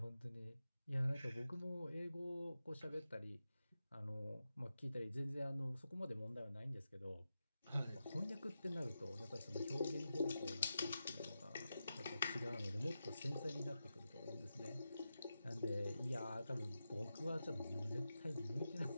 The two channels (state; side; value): inverted; both; correlation -0.90